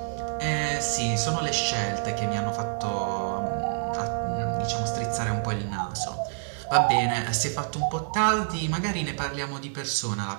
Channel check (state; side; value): silent; left; digital silence